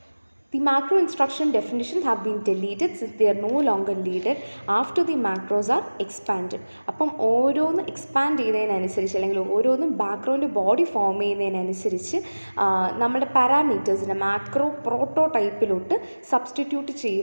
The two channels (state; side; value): inverted; both; correlation -1.00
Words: The macro instruction definitions have been deleted since they are no longer needed after the macros are expanded. അപ്പം ഓരോന്ന് എക്സ്പാൻഡ് ചെയ്യുന്നതിനനുസരിച്ച് അല്ലെങ്കിൽ ഓരോന്നും ബാക്ക്ഗ്രൗണ്ട് ബോഡി ഫോം ചെയ്യുന്നതിനനുസരിച്ച് നമ്മുടെ പാരാമീറ്റേഴ്സിനെ മാക്രോ പ്രോട്ടോടൈപ്പിലോട്ട് സബ്സ്റ്റിറ്റ്യൂട്ട്